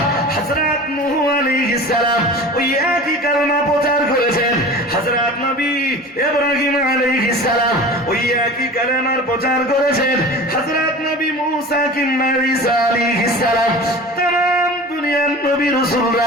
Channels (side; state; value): both; normal; correlation 0.37